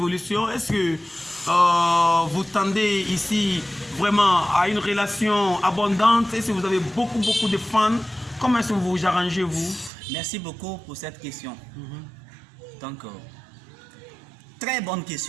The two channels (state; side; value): drops out; left; at 9.9 s